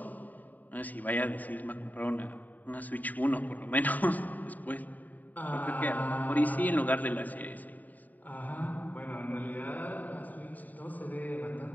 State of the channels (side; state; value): right; late; 0.083 ms